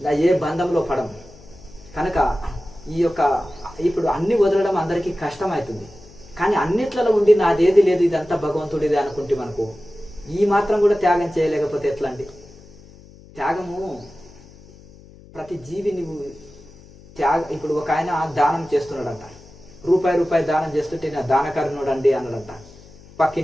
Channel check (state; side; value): noise; left; hum, 22 dB below the sound